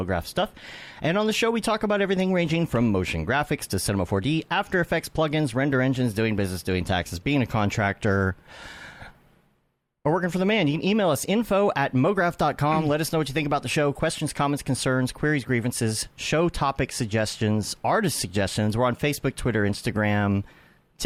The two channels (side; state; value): both; identical; correlation 1.00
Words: stuff. And on the show, we talk about everything ranging from motion graphics to Cinema 4D, After Effects, plugins, render engines, doing business, doing taxes, being a contractor, or working for the man. You can email us info@mograph.com. Let us know what you think about the show. Questions, comments, concerns, queries, grievances, show topic suggestions, artist suggestions. We're on Facebook, Twitter, Instagram,